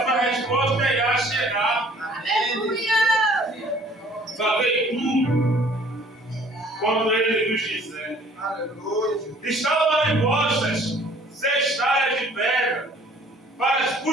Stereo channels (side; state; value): both; normal; correlation 0.55